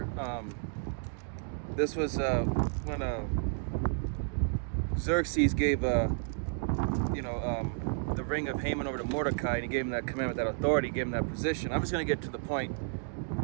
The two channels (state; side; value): silent; left; 57 dB below the other